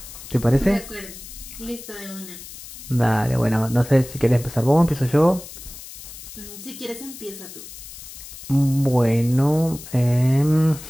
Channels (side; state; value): left; noise; hiss, 14 dB below the sound